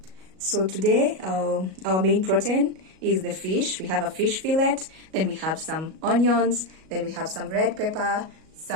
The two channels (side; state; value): left; late; 37 ms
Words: So today, our main protein is the fish. We have a fish fillet, then we have some onions, then we have some red pepper,